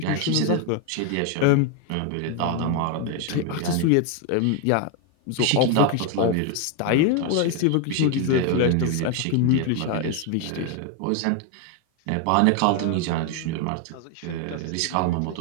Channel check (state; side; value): different; both; correlation 0.01